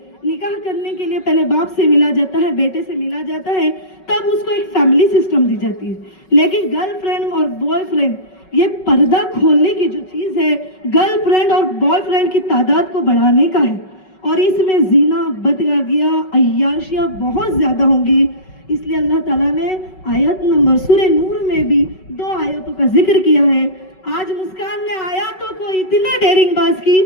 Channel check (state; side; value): late; right; 5.3 ms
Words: निकाह करने के लिए पहले बाप से मिला जाता है, बेटे से मिला जाता है, तब उसको एक फैमिली सिस्टम दी जाती है। लेकिन गर्लफ्रेंड और बॉयफ्रेंड, ये पर्दा खोलने की जो चीज है, गर्लफ्रेंड और बॉयफ्रेंड की तादाद को बढ़ाने का है। और इसमें जीना, बदगागियाँ, अय्याशियाँ बहुत ज्यादा होंगी। इसलिए अल्लाह ताला ने आयत नंबर सूरह नूर में भी 2 आयतों का जिक्र किया है। आज मुस्कान ने आयतों को इतना डेरिंग बाज की